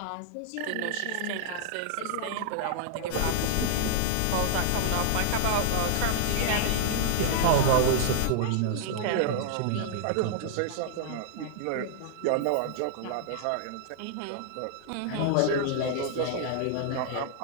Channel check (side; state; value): both; different; correlation 0.00